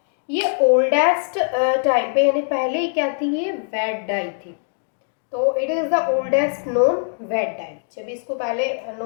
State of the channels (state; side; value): silent; right; digital silence